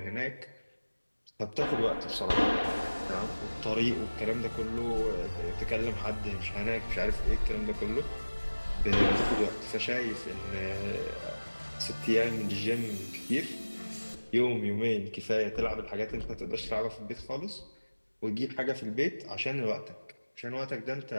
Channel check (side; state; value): both; inverted; correlation -1.00